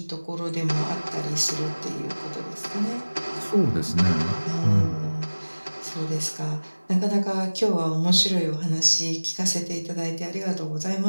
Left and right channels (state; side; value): inverted; both; correlation -1.00